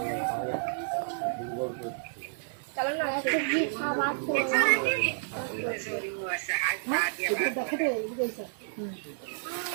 চলো না সবজি খাবার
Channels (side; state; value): left; silent; 58 dB below the other